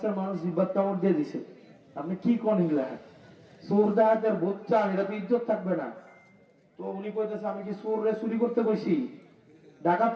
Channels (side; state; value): both; identical; correlation 1.00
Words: মানুষ জিব্বাত কামড় দিয়ে দিছে, আপনি কি কোন হিলা চোর ডাকাতের ভোট চান, এটা তো ইজ্জত থাকবে না। তো উনি কইতেছে, আমি কি চোররে চুরি করতে কইছি,